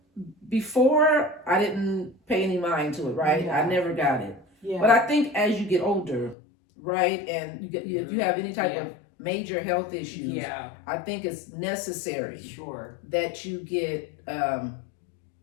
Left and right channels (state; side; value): drops out; right; at 6.4 s